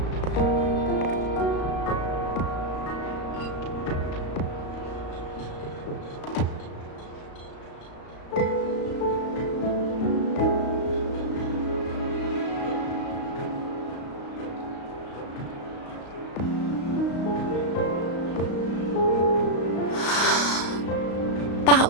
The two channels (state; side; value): late; right; 35 ms